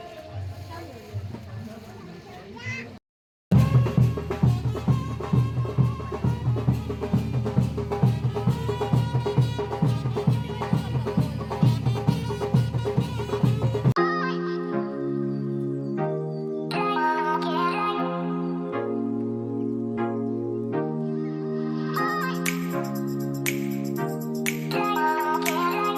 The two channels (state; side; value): identical; both; correlation 1.00